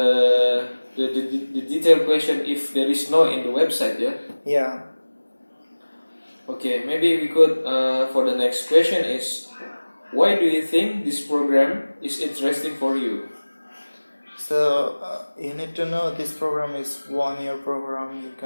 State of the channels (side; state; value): both; inverted; correlation -1.00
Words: detailed question if there is no in the website. Yeah. Okay, maybe we could for the next question is, why do you think this program is interesting for you? So you need to know this program is 1 year program. You